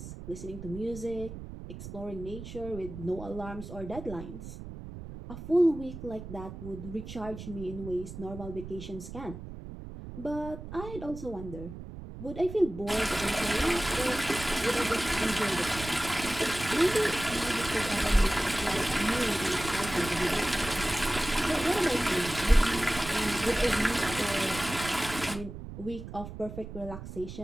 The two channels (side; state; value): right; noise; rumble, 11 dB below the sound